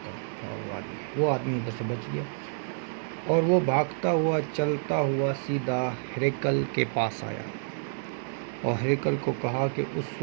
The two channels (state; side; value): silent; left; digital silence